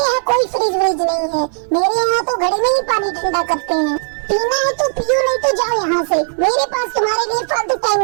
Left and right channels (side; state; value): left; silent; 60 dB below the other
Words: यहाँ कोई फ्रिज व्रिज नहीं है। मेरे यहाँ तो घड़े में ही पानी ठंडा करते हैं। पीना है तो पियो, नहीं तो जाओ यहाँ से। मेरे पास तुम्हारे लिए फालतू